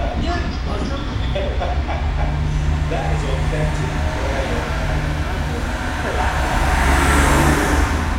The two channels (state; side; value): identical; both; correlation 1.00